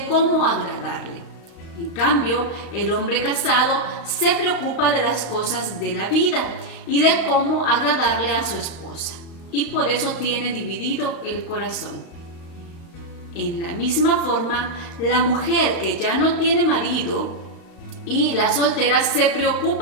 cómo agradarle. En cambio, el hombre casado se preocupa de las cosas de la vida y de cómo agradarle a su esposa, y por eso tiene dividido el corazón. En la misma forma, la mujer que ya no tiene marido y las solteras se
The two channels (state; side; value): late; right; 35 ms